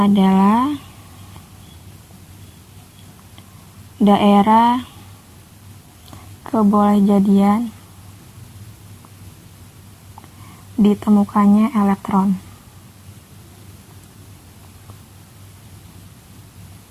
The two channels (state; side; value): identical; both; correlation 1.00